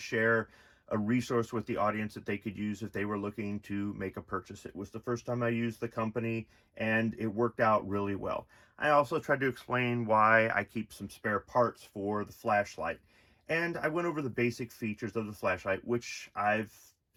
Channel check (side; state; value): both; identical; correlation 1.00